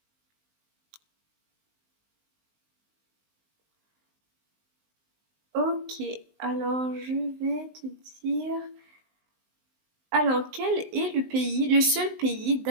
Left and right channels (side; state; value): left; late; 19 ms